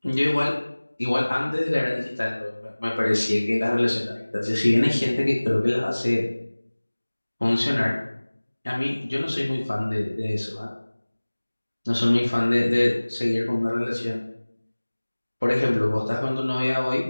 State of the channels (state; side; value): inverted; both; correlation -1.00